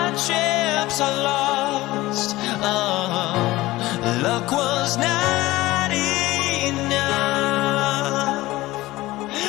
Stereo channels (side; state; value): right; quieter; 18.3 dB